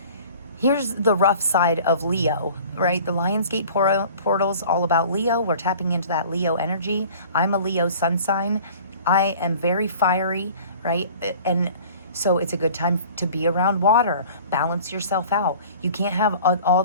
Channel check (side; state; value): both; inverted; correlation -0.46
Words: here's the rough side of Leo, right? The Lionsgate portal's all about Leo. We're tapping into that Leo energy. I'm a Leo sun sign. I am very fiery, right? And so it's a good time to be around water. Balance yourself out. You can't have all